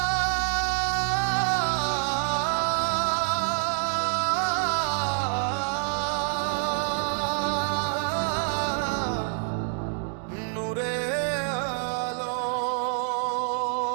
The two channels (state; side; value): silent; left; digital silence